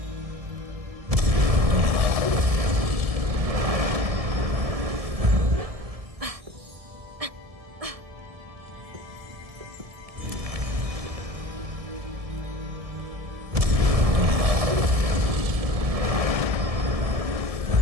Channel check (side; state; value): left; late; 1.7 ms